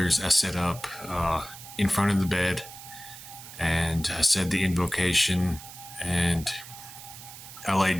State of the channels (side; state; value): right; noise; hiss, 15 dB below the sound